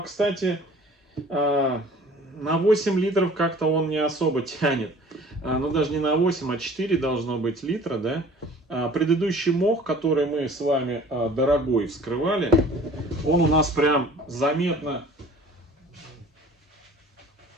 кстати, на 8 литров как-то он не особо тянет. Ну, даже не на 8, а 4 должно быть литра, да. Предыдущий мох, который мы с вами дорогой вскрывали, он у нас прям заметно...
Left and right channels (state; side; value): normal; both; correlation 0.48